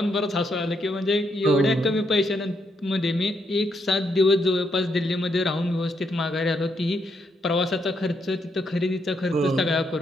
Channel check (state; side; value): normal; both; correlation 0.77